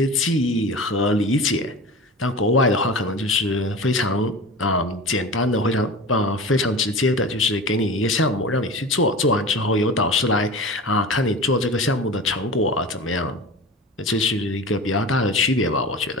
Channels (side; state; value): both; normal; correlation 0.33